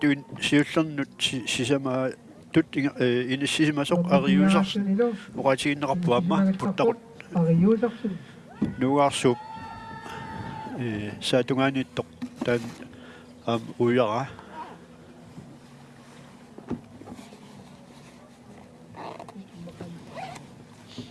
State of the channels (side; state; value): both; identical; correlation 1.00